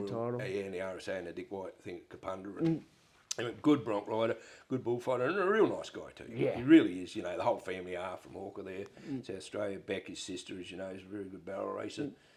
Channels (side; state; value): both; identical; correlation 1.00